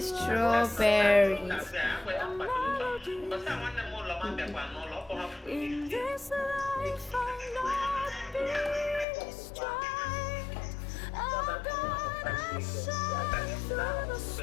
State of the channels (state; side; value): drops out; right; at 9.1 s